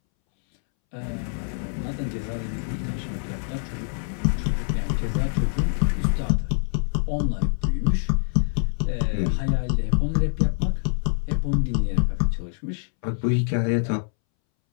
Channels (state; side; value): silent; right; 62 dB below the other